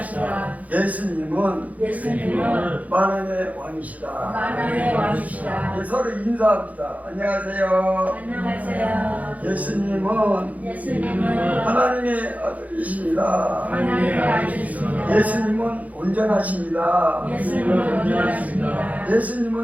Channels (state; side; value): late; left; 0.074 ms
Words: 예수님은 만왕의 왕이시다. 만왕의 왕이시다. 예, 서로 인사합니다. 안녕하세요. 안녕하세요. 예수님은 하나님의 아들이십니다. 하나님의 아들이십니다. 예수님은 온전하십니다. 예수님은